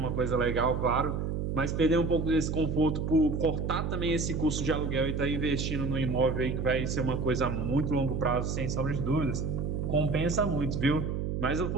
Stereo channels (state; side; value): noise; right; hum, 1 dB below the sound